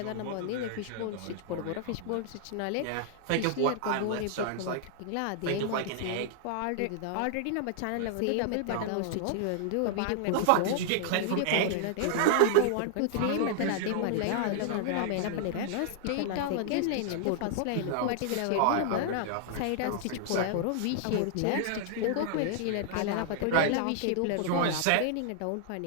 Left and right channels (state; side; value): different; both; correlation -0.01